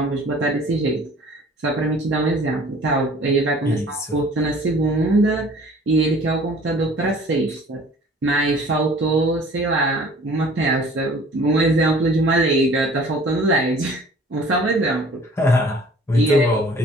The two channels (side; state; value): both; normal; correlation 0.50